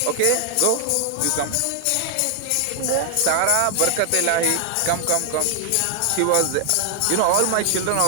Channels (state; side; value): different; both; correlation 0.00